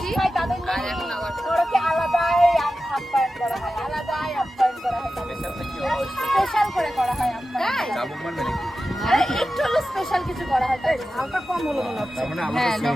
আর এখন আবার আলাদাই আপ্যায়ন করা হয়, আলাদাই আপ্যায়ন করা হয়, স্পেশাল করে করা হয় একটু হলো স্পেশাল কিছু করা হয়, তাই হালকা কম হলো মনে হচ্ছে। হ্যাঁ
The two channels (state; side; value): normal; both; correlation 0.93